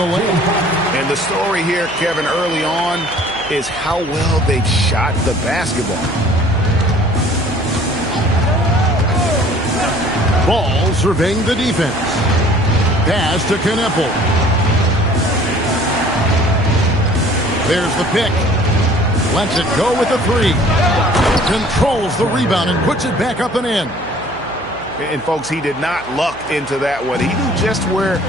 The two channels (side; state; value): right; noise; hum, 23 dB below the sound